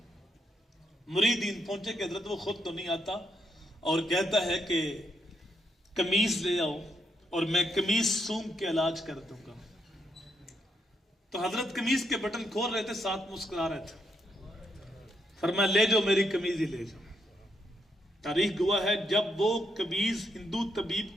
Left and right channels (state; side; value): normal; both; correlation 0.78